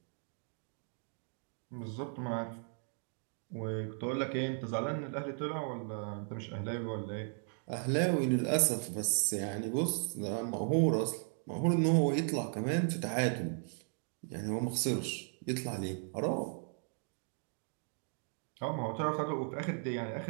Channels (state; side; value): silent; left; 54 dB below the other